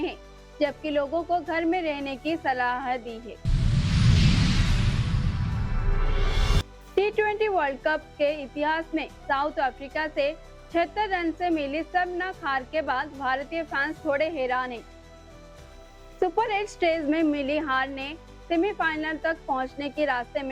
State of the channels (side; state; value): both; identical; correlation 1.00